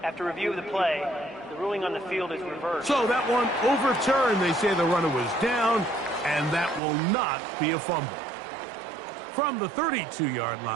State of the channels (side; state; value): left; drops out; at 6.8 s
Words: After review of the play, the ruling on the field is reversed. So that one overturned. They say the runner was down, and that will not be a fumble. From the 32-yard